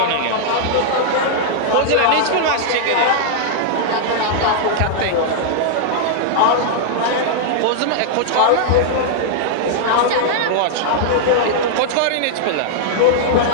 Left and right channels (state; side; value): different; both; correlation -0.01